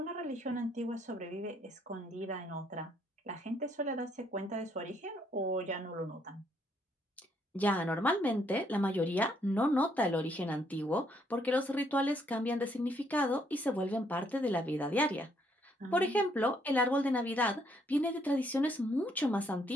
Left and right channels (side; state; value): both; normal; correlation 0.70